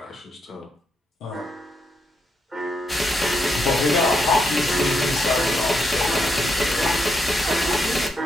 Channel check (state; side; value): normal; both; correlation 0.80